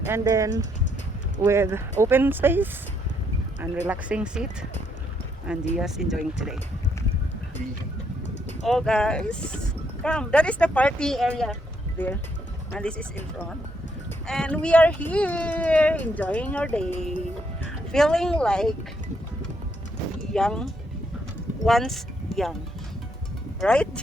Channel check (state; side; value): normal; both; correlation 0.74